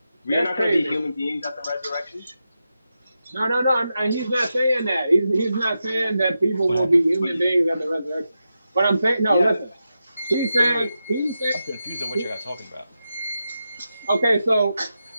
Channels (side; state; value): both; inverted; correlation -0.89